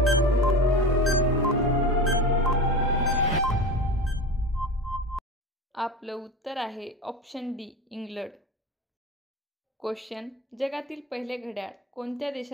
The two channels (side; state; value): both; normal; correlation 0.29